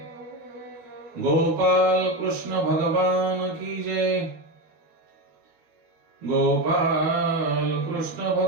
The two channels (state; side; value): late; left; 13 ms